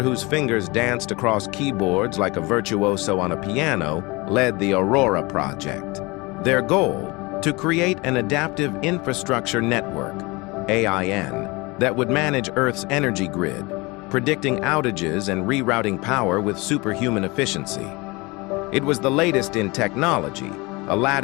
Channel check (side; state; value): right; quieter; 24.9 dB